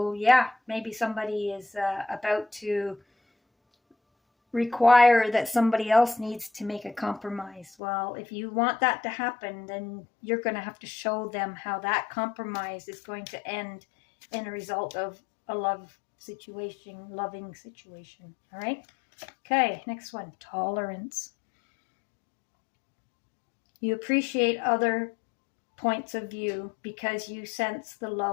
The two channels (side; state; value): right; drops out; at 7.8 s